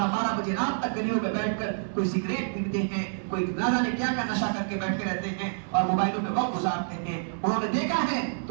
12 बजे रात तक गलियों में बैठकर कोई सिगरेट पीते हैं, कोई ना जाने क्या का नशा करके बैठे रहते हैं और मोबाइलों में वक्त गुजारते हैं। उन्होंने देखा है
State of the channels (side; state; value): left; silent; digital silence